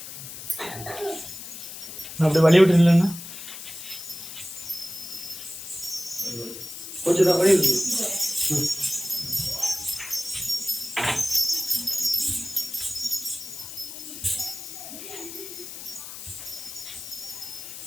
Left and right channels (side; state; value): left; noise; hiss, 11 dB below the sound